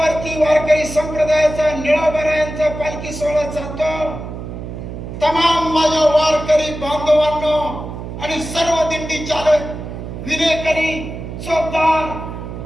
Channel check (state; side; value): noise; right; hum, 9 dB below the sound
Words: वारकरी संप्रदायाचा निळोबरायांचा पालखी सोहळा चालतो, तमाम माझ्या वारकरी बांधवांनो आणि सर्व दिंडी चालक, विनेकरी,